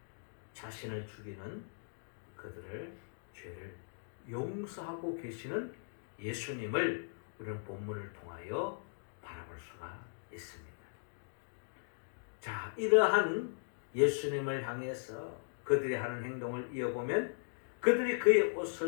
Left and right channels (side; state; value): right; silent; digital silence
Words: 자신을 죽이는 그들을 죄를 용서하고 계시는 예수님을 우리는 본문을 통하여 바라볼 수가 있습니다. 자, 이러한 예수님을 향해서 그들이 하는 행동을 이어보면 그들이 그의